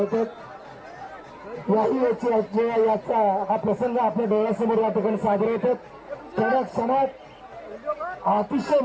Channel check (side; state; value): both; identical; correlation 1.00